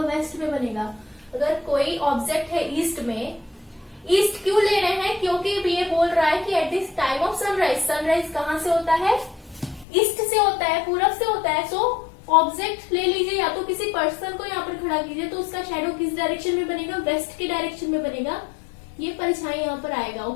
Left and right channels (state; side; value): drops out; right; at 9.9 s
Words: वेस्ट में बनेगा. अगर कोई ऑब्जेक्ट है ईस्ट में, ईस्ट क्यों ले रहे हैं, क्योंकि ये बोल रहा है कि at this time of sunrise, sunrise कहाँ से होता है, ईस्ट से होता है, पूरब से होता है. सो ऑब्जेक्ट ले लीजिए, या तो किसी पर्सन को यहाँ पर खड़ा कीजिए, तो उसका शैडो किस डायरेक्शन में बनेगा, वेस्ट की डायरेक्शन में बनेगा. ये परछाई यहाँ पर आएगा.